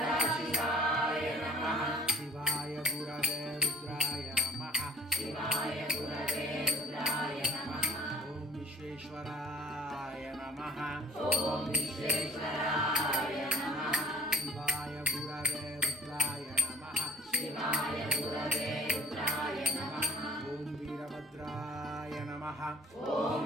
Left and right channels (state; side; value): normal; both; correlation 0.47